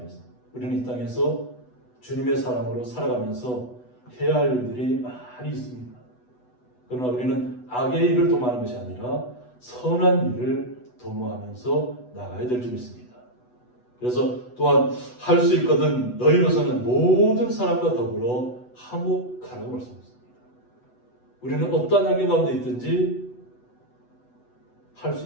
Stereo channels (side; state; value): right; late; 8.1 ms